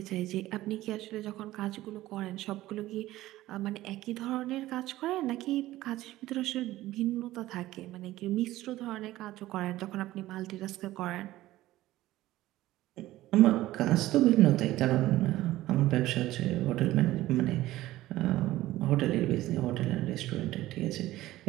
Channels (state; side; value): quieter; left; 16.0 dB